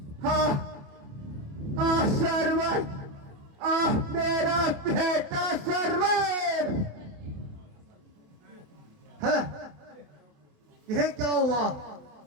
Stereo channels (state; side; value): late; left; 27 ms